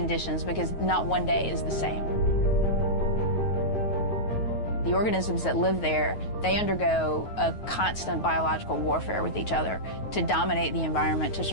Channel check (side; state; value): right; late; 9.4 ms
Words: because not one day is the same. The organisms that live there, they undergo a constant biological warfare with each other to dominate the environment, to